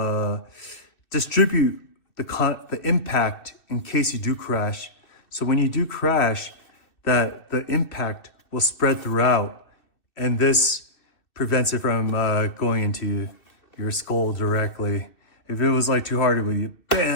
distribute the impact in case you do crash. So when you do crash, that the impact will spread throughout, and this prevents it from going into your skull directly. If it was like too hard, it would,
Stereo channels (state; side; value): late; right; 2.6 ms